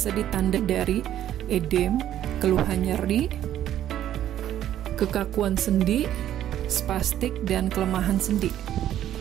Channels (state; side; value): quieter; left; 11.6 dB